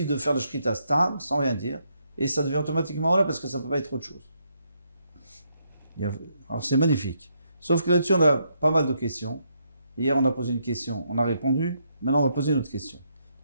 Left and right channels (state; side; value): inverted; both; correlation -0.77